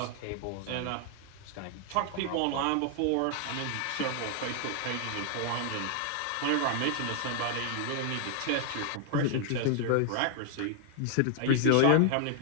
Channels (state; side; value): different; both; correlation 0.00